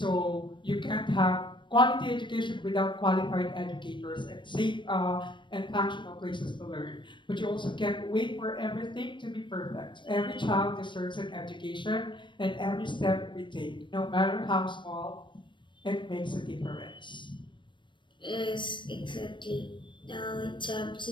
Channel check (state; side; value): late; right; 0.23 ms